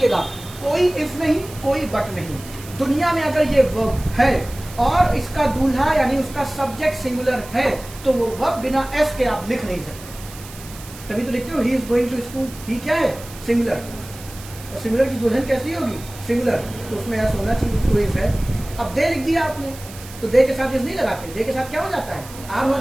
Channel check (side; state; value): right; noise; hiss, 17 dB below the sound